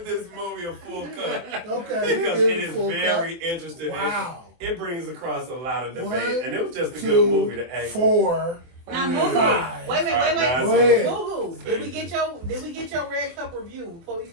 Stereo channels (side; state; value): left; late; 24 ms